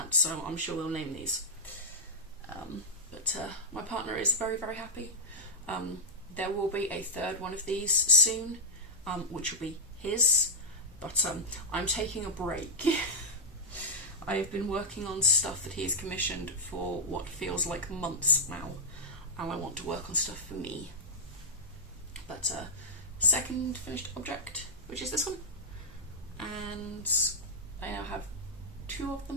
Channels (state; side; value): normal; both; correlation -0.06